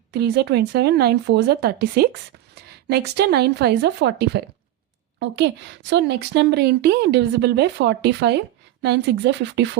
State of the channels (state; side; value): quieter; left; 13.7 dB